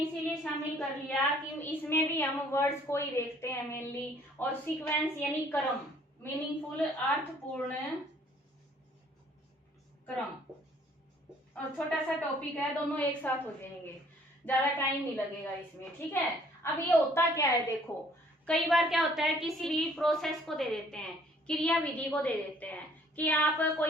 शामिल कर लिया कि इसमें भी हम वर्ड्स को ही देखते हैं मेनली, और सीक्वेंस यानी क्रम, मीनिंगफुल अर्थपूर्ण क्रम। और छोटा सा टॉपिक है, दोनों एक साथ हो जाएंगे, ज्यादा टाइम नहीं लगेगा इसमें। ठीक है, अब ये होता क्या है, देखो कई बार क्या होता है, किसी भी प्रोसेस को दे देते हैं, क्रिया विधि को दे देते हैं कि आप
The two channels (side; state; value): both; normal; correlation 0.59